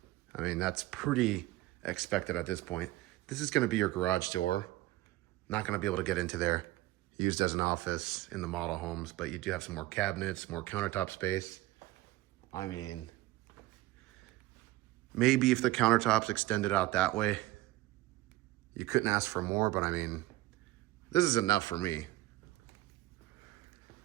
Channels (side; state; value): left; quieter; 17.7 dB